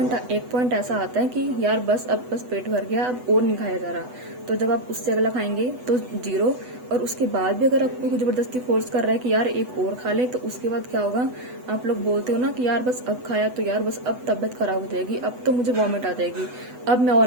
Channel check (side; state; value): left; late; 8.0 ms